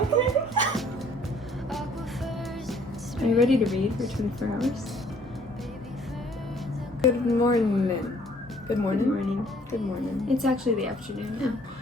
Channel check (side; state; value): both; normal; correlation 0.59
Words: Are you ready to read for 24 hours? Good morning. Good morning? Good morning. Good morning. It's actually the afternoon now.